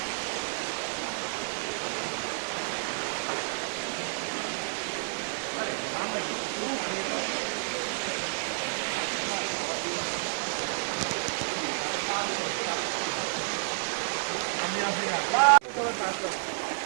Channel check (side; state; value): left; silent; 58 dB below the other